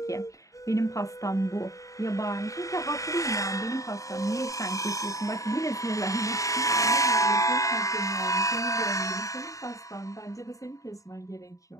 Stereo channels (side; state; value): right; late; 0.16 ms